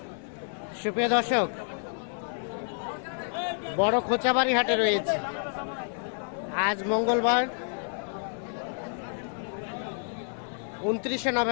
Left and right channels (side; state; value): right; silent; 58 dB below the other